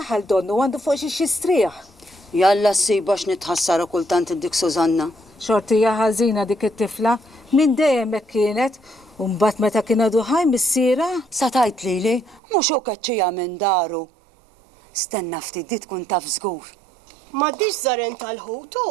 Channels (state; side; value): drops out; left; at 12.4 s